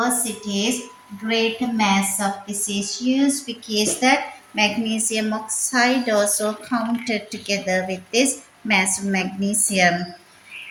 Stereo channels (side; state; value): both; identical; correlation 1.00